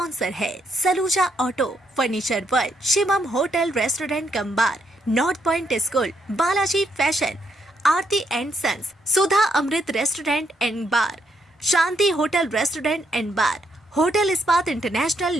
है Saluja auto, furniture world, Shivam hotel restaurant cum bar, north point school, Balaji fashion, Aarti and sons, Sudha Amrit restaurant and bar, Shanti hotel restaurant and bar, hotel Ispat international,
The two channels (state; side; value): normal; both; correlation 0.75